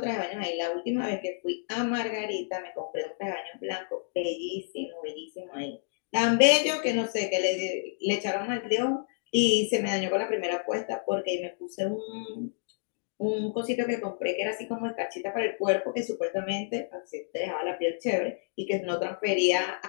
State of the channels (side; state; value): right; silent; digital silence